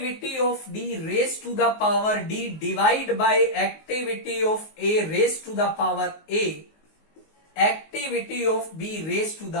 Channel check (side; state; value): right; late; 19 ms